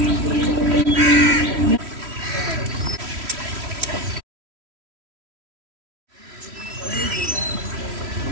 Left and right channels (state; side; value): late; left; 3.1 ms